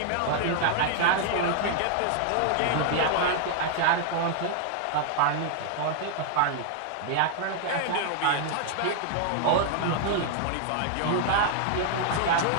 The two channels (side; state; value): both; different; correlation 0.00